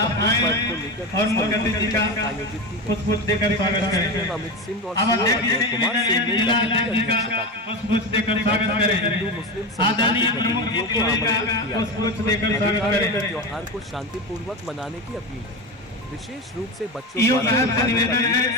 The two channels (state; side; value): normal; both; correlation 0.21